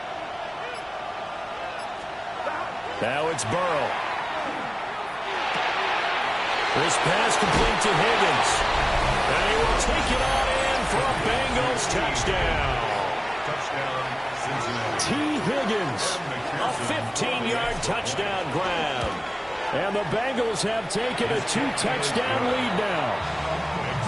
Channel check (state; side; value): identical; both; correlation 1.00